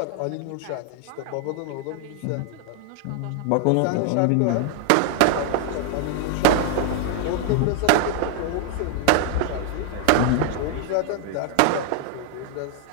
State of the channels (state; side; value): different; both; correlation 0.00